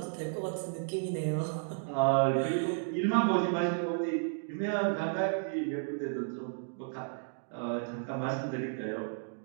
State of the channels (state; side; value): silent; left; digital silence